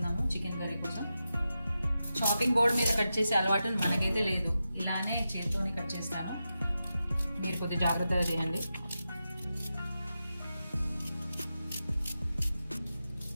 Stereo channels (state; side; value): inverted; both; correlation -0.90